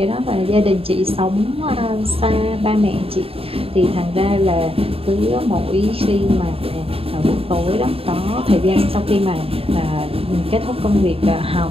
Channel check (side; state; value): left; late; 0.27 ms